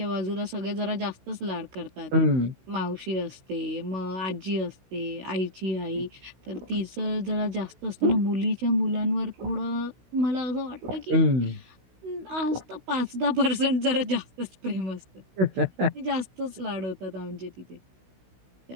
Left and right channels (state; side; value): late; left; 16 ms